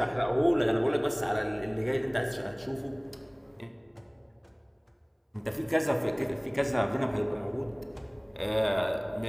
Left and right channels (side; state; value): both; identical; correlation 1.00